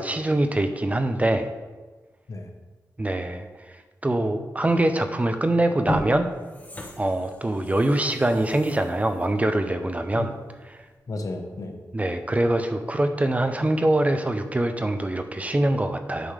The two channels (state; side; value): normal; both; correlation 0.92